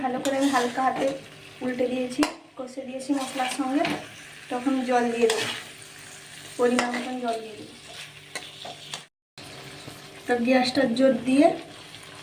ভালো করে আমি হালকা হাতে উল্টে দিয়েছি, কষে দিয়েছি মশলার সঙ্গে। তখন জল দিয়ে দেবো, পরিমাণ মতন জল দিয়ে দেবো। তো গ্যাসটা জোর দিয়ে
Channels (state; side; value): identical; both; correlation 1.00